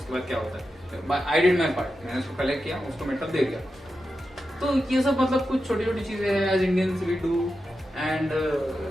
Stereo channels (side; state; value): both; normal; correlation 0.90